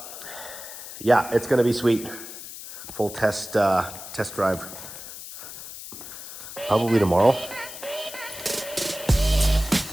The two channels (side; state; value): left; noise; hiss, 12 dB below the sound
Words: yeah, it's gonna be sweet. Full test drive probably tomorrow.